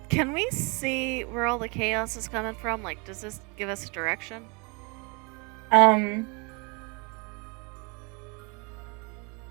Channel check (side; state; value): left; quieter; 31.3 dB